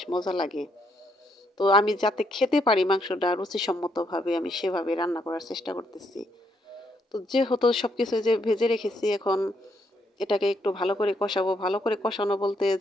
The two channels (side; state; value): both; normal; correlation 0.75